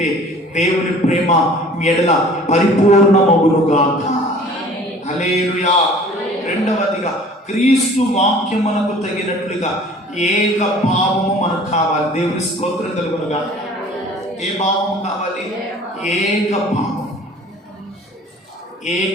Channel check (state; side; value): normal; both; correlation 0.48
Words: దేవుని ప్రేమ మీ ఎడల పరిపూర్ణమగునుగాక. హల్లెలూయా. రెండవదిగా, క్రీస్తు వాక్యమునకు తగినట్లుగా ఏక భావము మనకు కావాలి. దేవుని స్తోత్రం కలుగునుగాక. ఏ భావము కావాలి? ఏక భావం,